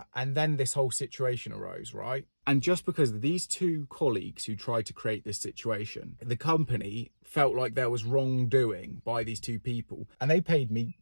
and then this whole situation arose, right? And just because of these two colleagues who tried to create this situation, the company felt like there was wrongdoing by these two people, and they paid me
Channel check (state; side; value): inverted; both; correlation -1.00